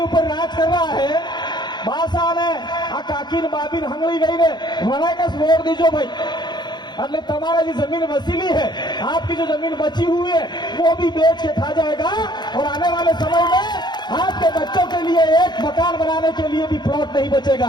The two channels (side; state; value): right; late; 0.21 ms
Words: राज कर रहा है, बासाने आ काकिन बाबिन हंगली गई ने मना का वोट दीजो भाई। એટલે તમારા जो जमीन वसीली है, आपकी जो जमीन बची हुई है, वो भी बेच के खा जाएगा और आने वाले समय में आपके बच्चों के लिए एक मकान बनाने के लिए भी प्लॉट नहीं